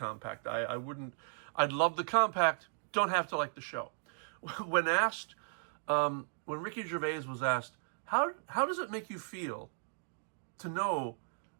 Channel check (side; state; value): left; silent; digital silence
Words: I'd love the compact, don't have to like the show. When asked, when Ricky Gervais was asked, how does it make you feel to know